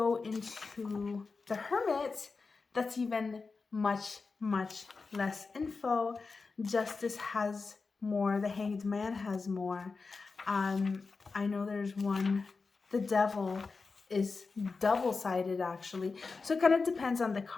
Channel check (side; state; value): right; quieter; 4.4 dB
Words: into the Hermit, that's even much, much less info. Justice has more. The Hanged Man has more. I know there's one. The Devil is double-sided actually. So it kind of depends on the